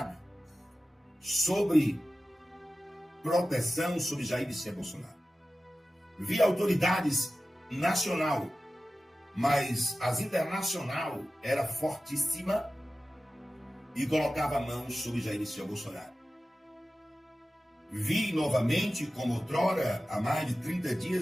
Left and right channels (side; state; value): both; normal; correlation 0.95